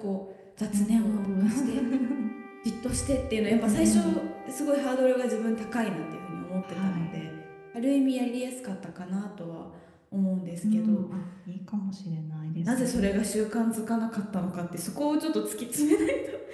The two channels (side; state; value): both; identical; correlation 1.00